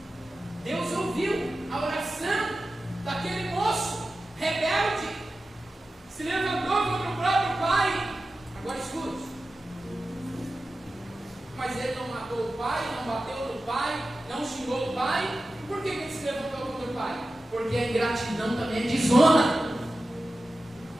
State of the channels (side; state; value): both; normal; correlation 0.94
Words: Deus ouviu a oração daquele moço rebelde, se levantou contra o próprio pai. Agora escute: mas ele não matou o pai, não bateu no pai, não xingou o pai. Por que ele se levantou contra o pai? Porque a ingratidão também é desonra.